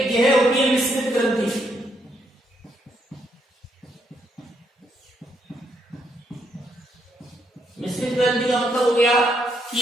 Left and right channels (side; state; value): both; normal; correlation 0.76